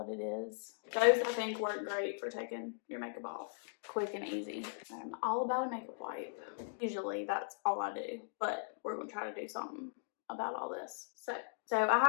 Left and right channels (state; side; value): silent; right; digital silence